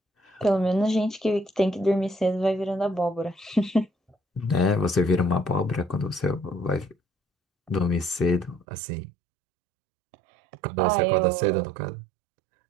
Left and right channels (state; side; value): drops out; left; at 8.7 s